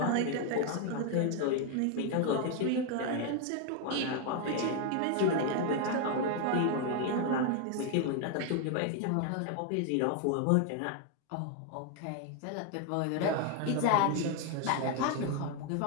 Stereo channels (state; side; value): different; both; correlation 0.01